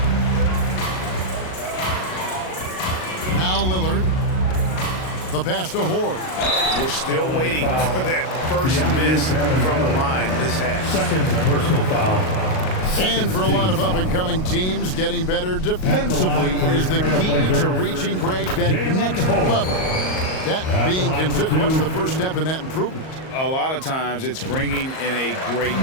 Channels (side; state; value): right; late; 38 ms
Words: Now Lillard. The pass to Horde. We're still waiting for that first miss from the line this half. Second personal foul. And for a lot of up-and-coming teams, getting better defensively is the key to reaching, Greg, that next level. That being considered, what's the first step in that improvement? A lot of times it's bringing in a great